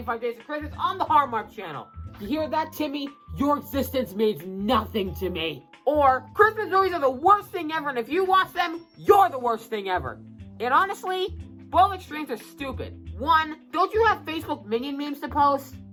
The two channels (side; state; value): both; identical; correlation 1.00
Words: Days of Christmas on the Hallmark Channel. You hear that, Timmy? Your existence means nothing to me. Or, Christmas movies are the worst thing ever, and if you watch them, you're the worst thing ever. And honestly, both extremes are stupid. One, don't you have Facebook minion memes to post?